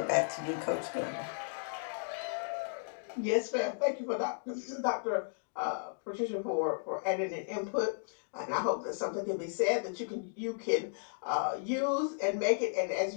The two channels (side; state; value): right; silent; digital silence